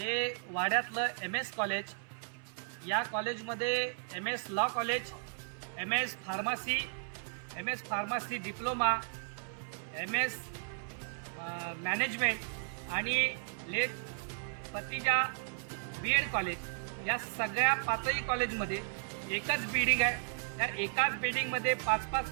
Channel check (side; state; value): left; silent; 55 dB below the other